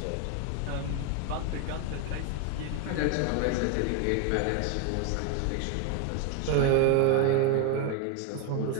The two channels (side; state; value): both; different; correlation 0.01